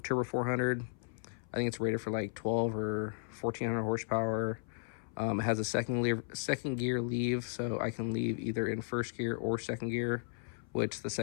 400. I think it's rated for like 12 or 1400 horsepower. It has a second gear leave, so I can leave either in first gear or second gear, which the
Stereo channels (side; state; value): right; silent; 54 dB below the other